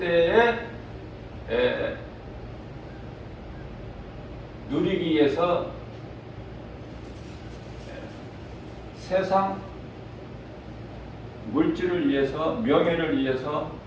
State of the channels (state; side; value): identical; both; correlation 1.00